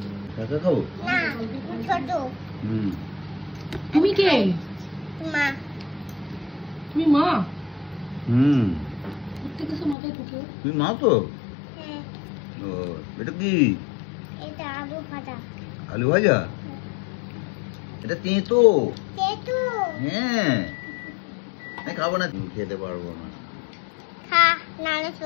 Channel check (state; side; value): drops out; right; at 10.0 s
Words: কাকা খাবো? না, ছোট। হুম। তুমি কে? মা। তুমি মা? হুম। প্রত্যেকটা সময় মাথায় ঢুকে। তুমি মা তো? হ্যাঁ। ও, এটা কি? এটা আলু ভাজা। আলু ভাজা? এটা তেঁতো। তেঁতু। হ্যাঁ, আমি খাবো না, খেতে পারবো না। খা, নাহলে